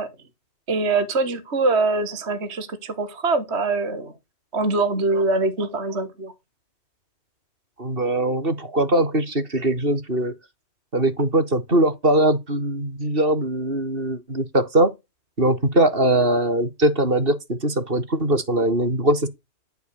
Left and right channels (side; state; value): left; late; 2.7 ms